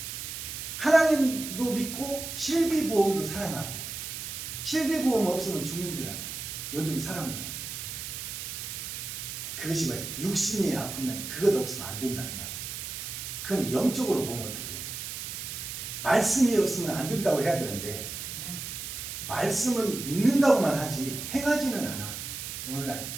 하나님도 믿고 실비보험도 사랑하고 실비보험 없으면 죽는 줄 알아. 요즘 사람들은. 그것이 뭐야? 육신이 아프면 그것 없으면 안 된다는 말이에요. 그럼 영적으로 보면 어떻게 해요? 말씀이 없으면 안 된다고 해야 되는데 말씀은 믿는다고만 하지 행하지는 않아. 오늘날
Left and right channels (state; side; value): noise; right; hiss, 7 dB below the sound